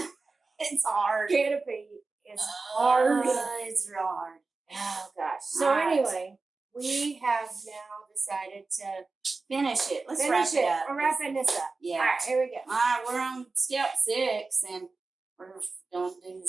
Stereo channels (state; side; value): quieter; left; 3.9 dB